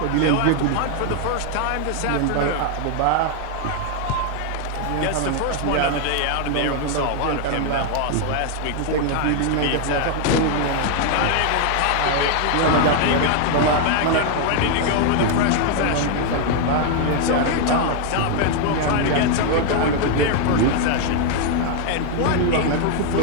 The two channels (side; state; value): both; different; correlation 0.00